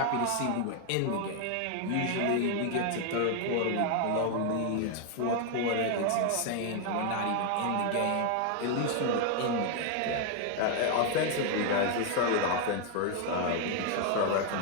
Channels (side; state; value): both; different; correlation 0.00